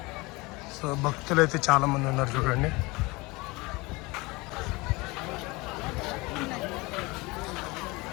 సో భక్తులు అయితే చాలామంది ఉన్నారు చూడండి.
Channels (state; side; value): quieter; right; 23.9 dB